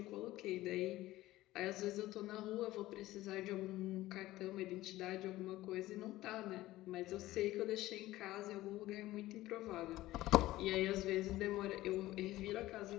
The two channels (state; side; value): quieter; right; 16.5 dB